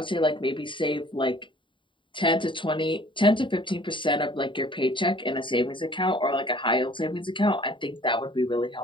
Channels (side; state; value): right; late; 0.24 ms